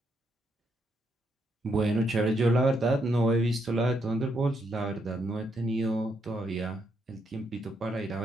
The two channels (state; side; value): normal; both; correlation 0.77